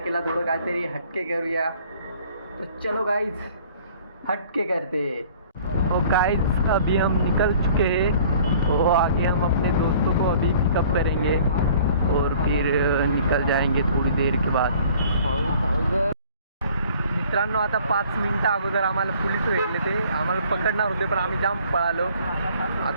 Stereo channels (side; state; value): both; inverted; correlation -0.53